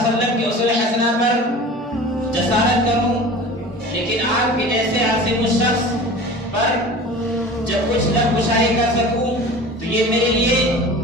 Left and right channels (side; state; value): both; normal; correlation 0.38